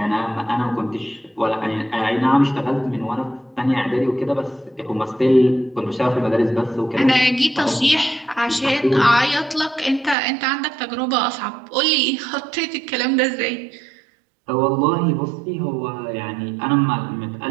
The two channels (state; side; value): drops out; left; at 10.2 s